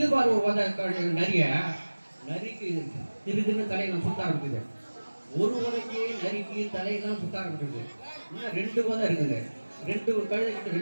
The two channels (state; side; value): inverted; both; correlation -1.00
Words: பாரு ஒரு உதை நரிக்கு திருதுன்னு தலையெல்லாம் சுத்த ஆரம்பிக்குது. ஒரு உதைக்கு நரிக்கு தலையெல்லாம் சுத்த ஆரம்பிக்குது. இன்னும் 2 உதை இருக்குது. 2 கழுதை கிட்ட